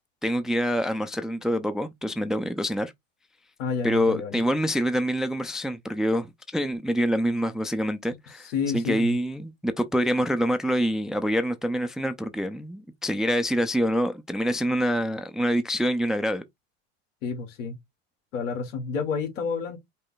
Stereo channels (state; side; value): normal; both; correlation 0.85